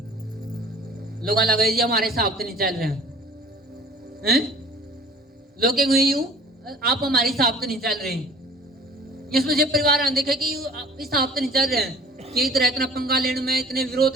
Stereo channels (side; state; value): both; normal; correlation 0.48